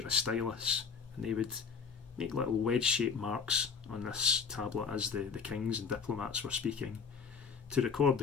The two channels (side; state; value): right; quieter; 5.9 dB